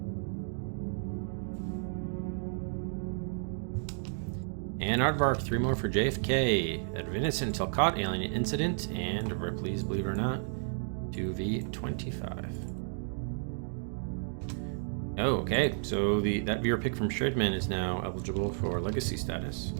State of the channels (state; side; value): silent; left; digital silence